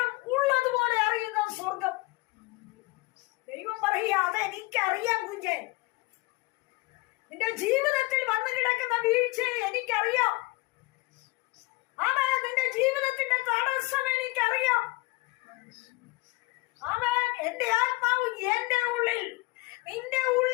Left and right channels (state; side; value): quieter; right; 23.5 dB